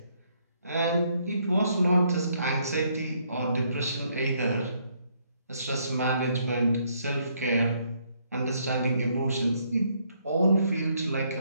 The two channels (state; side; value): inverted; both; correlation -0.71